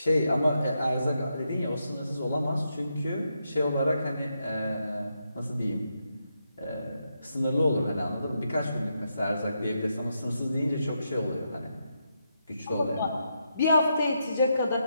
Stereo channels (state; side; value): inverted; both; correlation -0.82